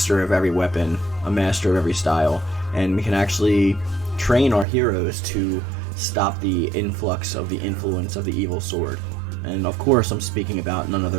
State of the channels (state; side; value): drops out; left; at 4.7 s